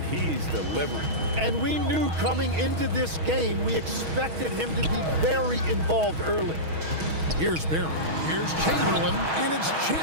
he's delivering. And we knew coming into this game, we expected him to be very involved early. Here's Barry. Here's Chamberlain, and it's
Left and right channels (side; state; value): left; late; 6.3 ms